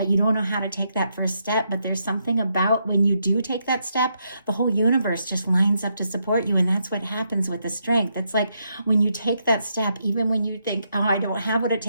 you don't know how to take that first step. But there's something about when you do take that step, the whole universe just lines up to support you. And that's what happens with the strength. It's like when you take that step, even when you think, oh, I don't have what it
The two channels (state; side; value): inverted; both; correlation -0.79